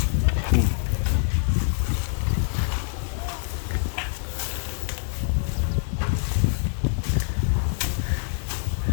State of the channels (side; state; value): right; silent; 60 dB below the other